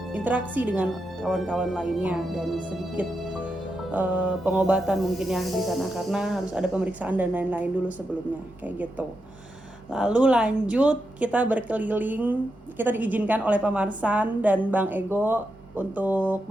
interaksi dengan kawan-kawan lainnya, dan sedikit pengobatan mungkin ya di sana, karena harus ada pemeriksaan dan lain-lain dulu sebelumnya, kayak gitu. Lalu lanjut kita berkeliling, kita diizinkan oleh Pak Marsan dan Bang Ego untuk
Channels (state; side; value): normal; both; correlation 0.86